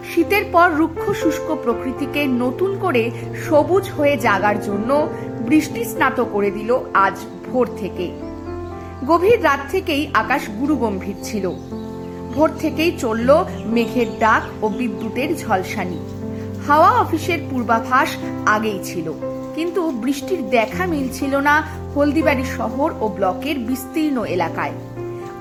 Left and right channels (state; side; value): identical; both; correlation 1.00